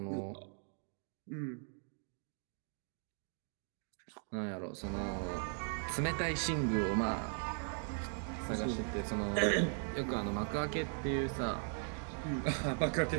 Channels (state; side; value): silent; left; 52 dB below the other